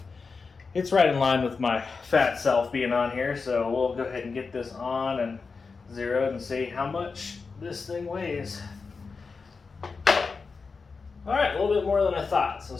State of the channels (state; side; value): quieter; right; 4.7 dB